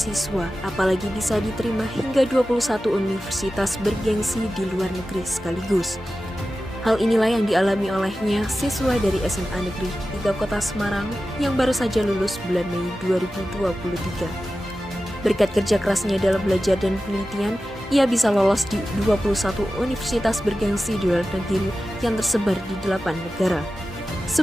apalagi bisa diterima hingga 21 universitas bergengsi di luar negeri sekaligus. Hal inilah yang dialami olehnya siswa dari SMA Negeri 3 Kota Semarang yang baru saja lulus bulan Mei 2023. Berkat kerja kerasnya dalam belajar dan penelitian, ia bisa lolos di 21 universitas bergengsi di luar negeri yang tersebar di 8 negara.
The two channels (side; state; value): both; normal; correlation 0.94